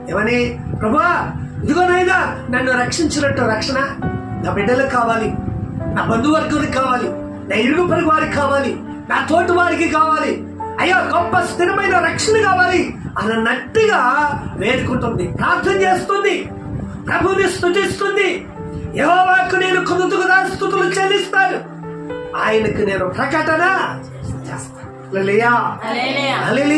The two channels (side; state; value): both; identical; correlation 1.00